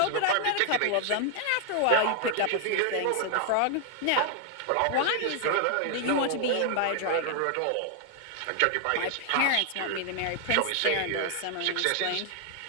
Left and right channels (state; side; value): different; both; correlation 0.00